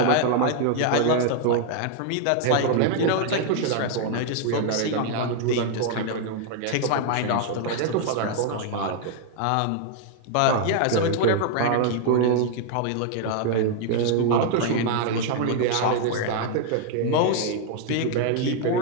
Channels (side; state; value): both; different; correlation 0.00